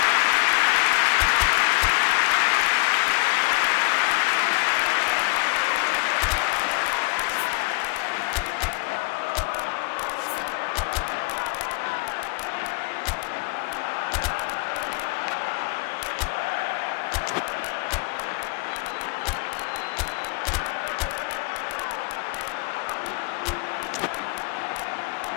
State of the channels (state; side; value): quieter; right; 29.2 dB